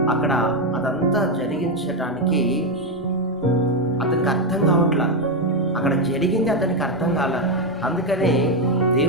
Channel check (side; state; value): both; normal; correlation 0.06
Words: అక్కడ అదంతా జరిగించటానికి అతనికి అర్థం కావట్లా. అక్కడ జరిగింది అతనికి అర్థం కాల. అందుకనే